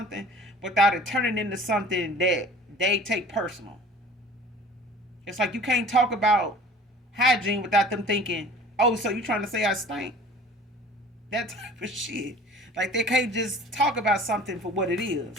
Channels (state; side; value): normal; both; correlation 0.45